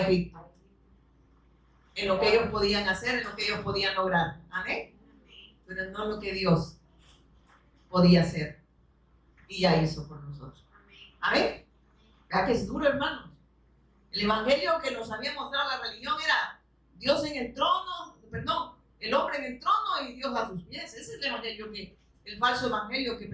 En lo que ellos podían hacer, en lo que ellos podían lograr. ¿Amén? Pero no lo que Dios podía hacer y ya hizo por nosotros. ¿Amén? ¿Verdad que es duro, hermanos? El evangelio que nos había mostrado la religión era Dios en el trono, el hombre en el trono y Dios a sus pies. Ese es el evangelio el falso evangelio que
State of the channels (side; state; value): both; identical; correlation 1.00